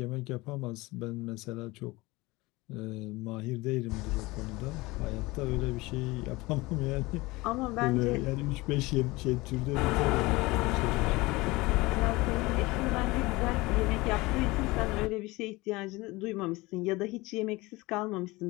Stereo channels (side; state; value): right; quieter; 21.8 dB